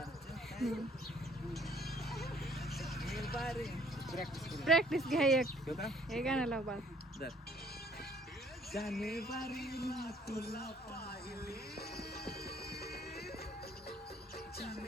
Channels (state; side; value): normal; both; correlation 0.60